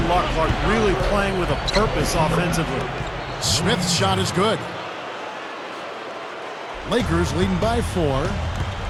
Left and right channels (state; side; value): identical; both; correlation 1.00